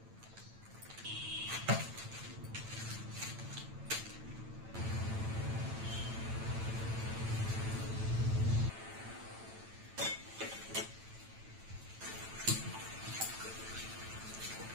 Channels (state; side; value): late; left; 9.0 ms